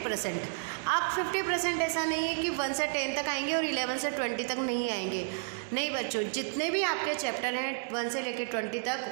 आप 50% ऐसा नहीं है कि 1 से 10 तक आएंगे और 11 से 20 तक नहीं आएंगे। नहीं बच्चों, जितने भी आपके चैप्टर हैं 1 से लेकर 20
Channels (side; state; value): left; silent; 57 dB below the other